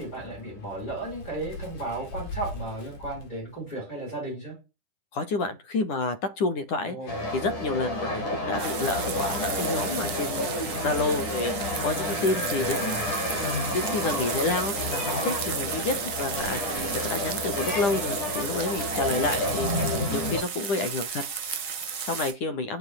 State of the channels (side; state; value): right; late; 10 ms